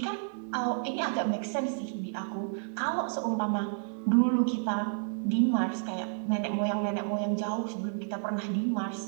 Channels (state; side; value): silent; left; digital silence